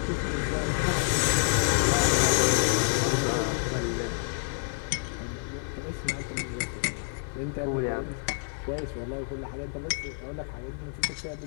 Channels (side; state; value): right; silent; digital silence